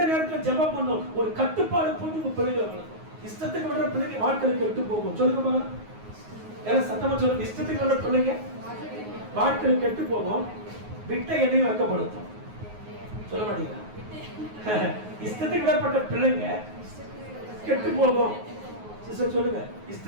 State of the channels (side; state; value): left; late; 9.5 ms